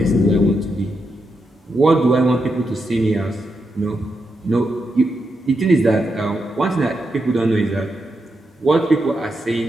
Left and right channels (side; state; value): both; normal; correlation 0.84